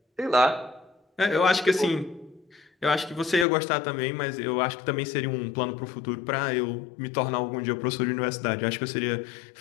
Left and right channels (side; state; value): right; drops out; at 3.5 s